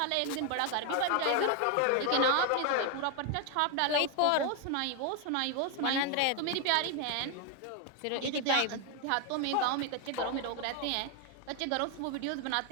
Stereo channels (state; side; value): different; both; correlation 0.01